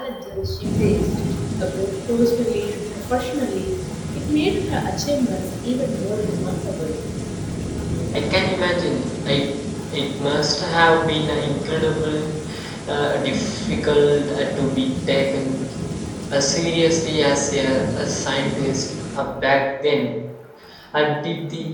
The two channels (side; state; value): both; identical; correlation 1.00